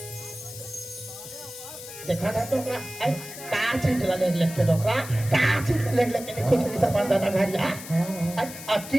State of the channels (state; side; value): noise; left; hiss, 12 dB below the sound